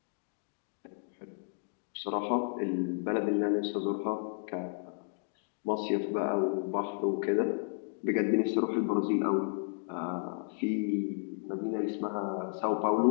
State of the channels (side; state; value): right; silent; digital silence